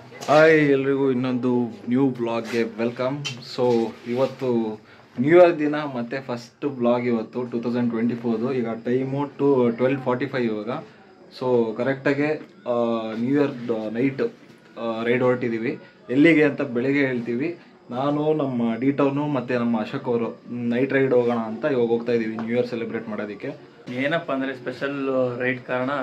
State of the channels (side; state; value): both; identical; correlation 1.00